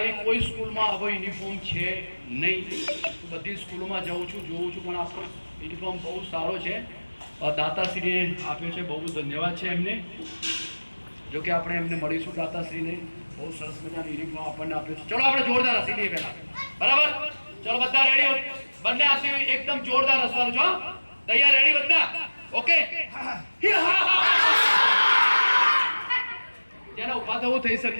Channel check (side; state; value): both; inverted; correlation -1.00